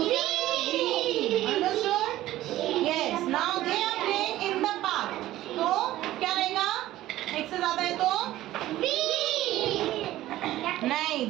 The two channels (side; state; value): left; quieter; 15.0 dB